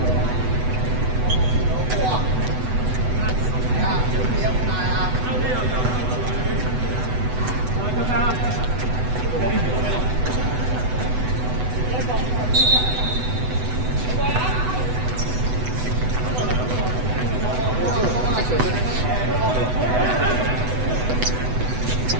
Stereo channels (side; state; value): left; late; 8.0 ms